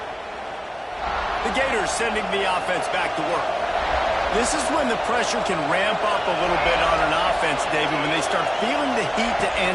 The Gators sending the offense back to work. This is when the pressure can ramp up a little bit on an offense, David, when they start feeling the heat to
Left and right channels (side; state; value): both; identical; correlation 1.00